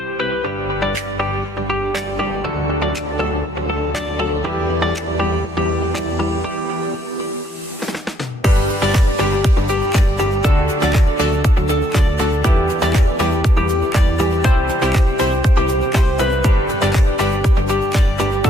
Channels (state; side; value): normal; both; correlation 0.70